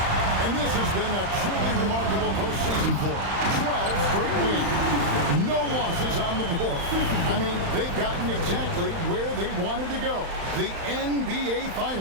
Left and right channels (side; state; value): left; late; 35 ms